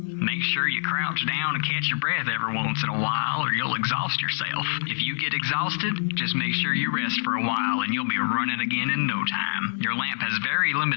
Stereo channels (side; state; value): right; silent; digital silence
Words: Make sure you crouch down and catch your breath every once in a while or you'll exhaust yourself. If you get exhausted, just make sure you rest for a while and you'll be running again in no time. Your lamp has very